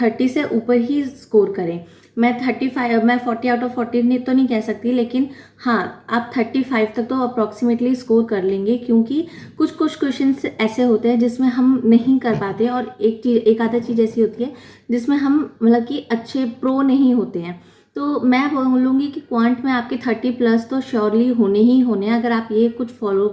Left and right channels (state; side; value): identical; both; correlation 1.00